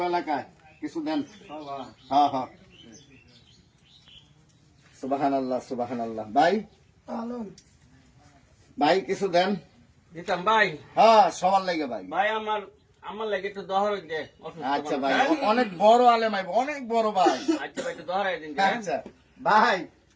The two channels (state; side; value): identical; both; correlation 1.00